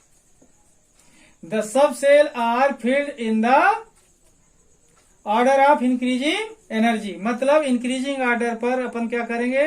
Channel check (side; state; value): both; identical; correlation 1.00